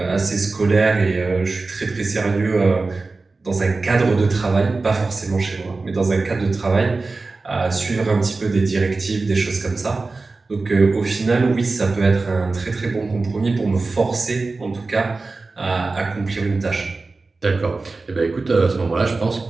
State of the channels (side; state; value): left; quieter; 3.7 dB